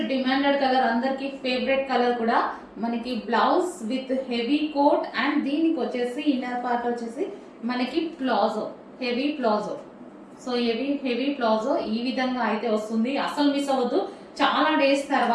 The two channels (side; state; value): both; identical; correlation 1.00